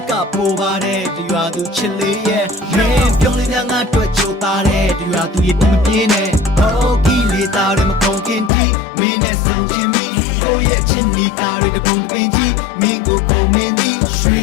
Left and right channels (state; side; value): drops out; right; at 8.5 s